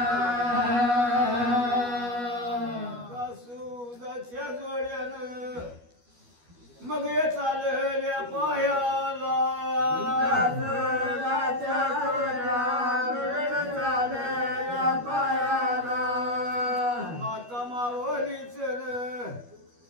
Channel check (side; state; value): left; late; 12 ms